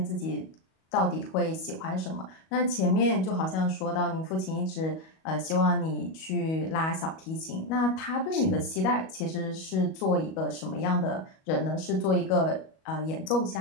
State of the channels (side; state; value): right; late; 37 ms